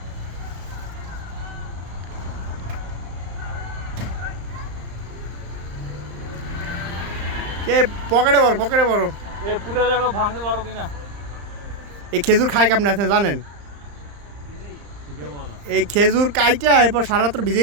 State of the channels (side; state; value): left; late; 35 ms